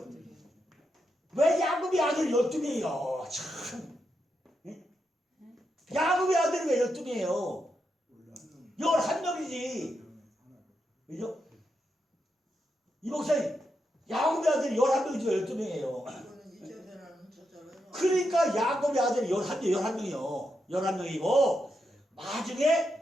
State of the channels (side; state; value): both; normal; correlation 0.84